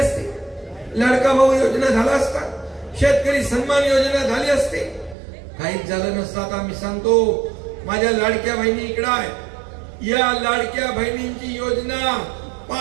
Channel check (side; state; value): left; drops out; at 5.2 s